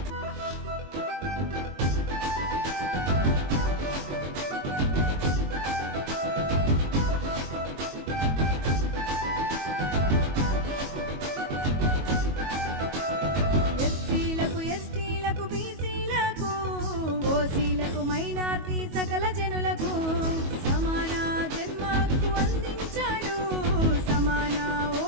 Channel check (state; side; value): late; left; 22 ms